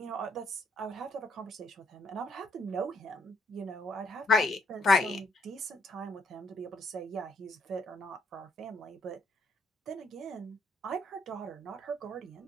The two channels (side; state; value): both; normal; correlation 0.71